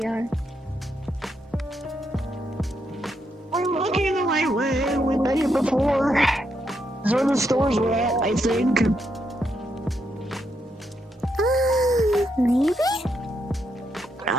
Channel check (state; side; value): normal; both; correlation 0.79